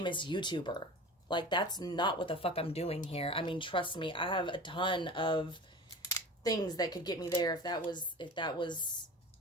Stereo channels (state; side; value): normal; both; correlation 0.36